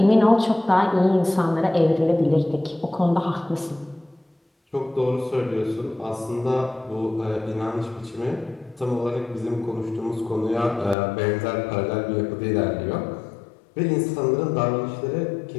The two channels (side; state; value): right; drops out; at 11.0 s